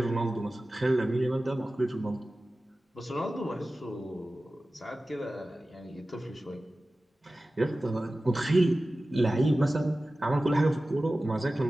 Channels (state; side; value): normal; both; correlation 0.96